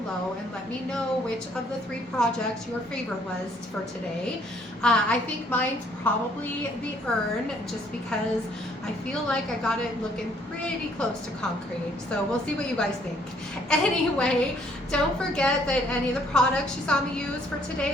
and let me know which of the 3 projects your favorite was for today. I think mine's probably the urn, just because I feel like I got it looking pretty close to concrete. So we'll see what you guys think. Anyway, don't forget that any of the products you saw me use for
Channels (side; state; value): both; normal; correlation 0.64